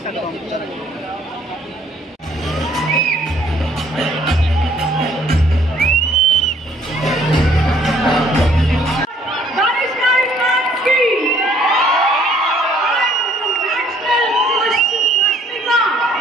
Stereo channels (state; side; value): normal; both; correlation 0.62